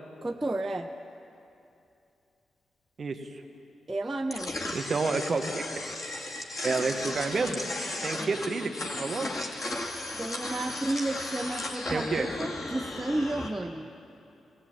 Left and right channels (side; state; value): both; normal; correlation 0.88